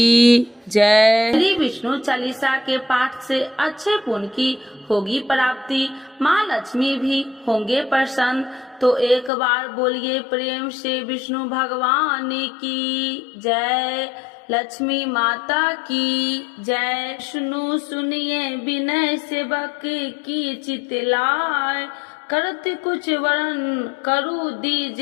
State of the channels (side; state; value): right; drops out; at 9.3 s